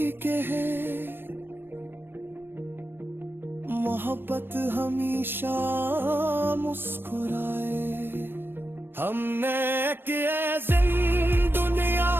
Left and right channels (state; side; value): late; left; 0.099 ms